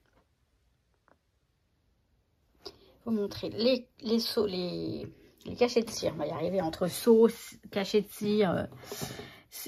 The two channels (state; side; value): identical; both; correlation 1.00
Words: vous montrer les les cachets de cire. On va y arriver entre sauce, cachets de cire,